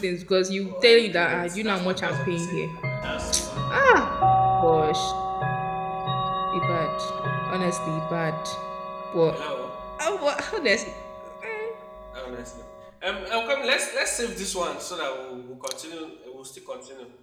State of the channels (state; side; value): identical; both; correlation 1.00